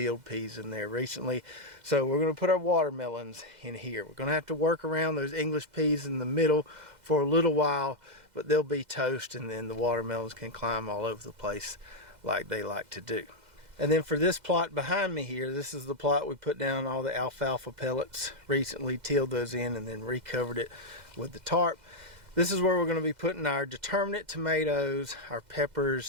peas in there recently. So we're going to put our watermelons in here. We're going to have to work around those English peas in the middle for a little while, but they'll be toast, and then the watermelons can climb all over the place like they like to do. And then for this plot behind me here, this is the plot we put down all the alfalfa pellets, recently tilled those in and then recovered it with the tarp. This is where we're going to be putting our determinate tomatoes, our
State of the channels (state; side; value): late; left; 2.0 ms